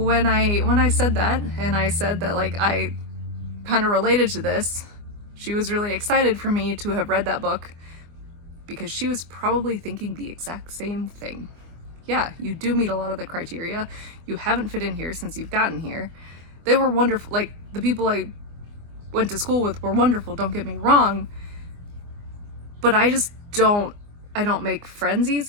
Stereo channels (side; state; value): left; late; 24 ms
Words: I said that, and I said that, like, I kind of related to this, she was really excited for me to have read that book because she was probably thinking the exact same thing. Yeah, you do meet a lot of the criteria. You haven't fit in here since you've gotten here. They were wonderful. Like, the people I went to school with were wonderful, don't get me wrong. But I don't make friends